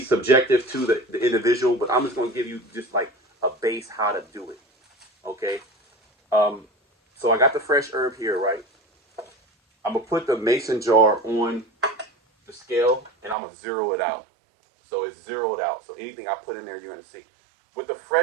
subjective to the individual, but I'm just going to give you just like a base how to do it. Okay? So I got the fresh herb here, right? I'm going to put the mason jar on the scale, and I'm going to zero it out. So it's zeroed out. So anything I put in there, you're going to see. With the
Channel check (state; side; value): drops out; left; at 13.4 s